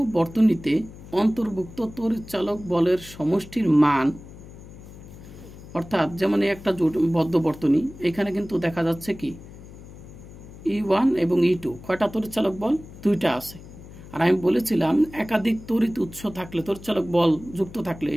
বর্তনীতে অন্তর্ভুক্ত তড়িৎচালক বলের সমষ্টির মান, অর্থাৎ যেমন একটা বদ্ধ বর্তনী, এখানে কিন্তু দেখা যাচ্ছে কি E1 এবং E2 কয়টা তড়িৎচালক বল? দুইটা আছে। আর আমি বলেছিলাম একাধিক তড়িৎ উৎস থাকলে, তড়িৎচালক বল যুক্ত থাকলে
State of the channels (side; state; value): left; noise; hum, 17 dB below the sound